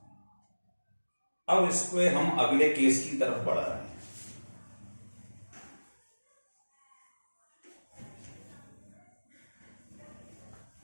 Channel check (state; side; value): inverted; both; correlation -1.00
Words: अब इसको हम अगले केस की तरफ बढ़ा रहे हैं।